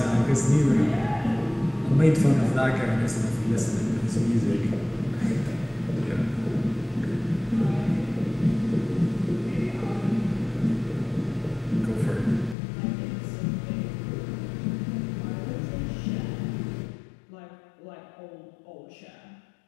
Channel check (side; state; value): right; drops out; at 12.6 s